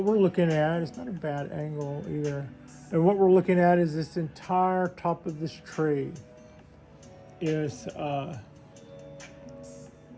we're looking at is not a bad angle either. And what we're looking at is this entire top of this tree is the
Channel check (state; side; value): identical; both; correlation 1.00